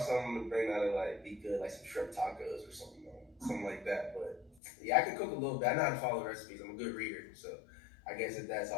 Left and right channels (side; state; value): right; drops out; at 4.6 s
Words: to bring that'll be good, like some shrimp tacos or something like that. But yeah, I can cook a little bit. I know how to follow recipes. I'm a good reader, so I guess if that's